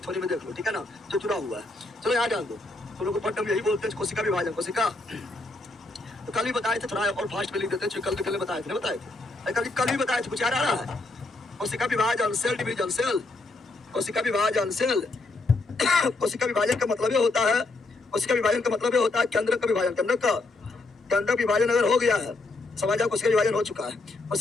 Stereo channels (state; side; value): quieter; right; 3.1 dB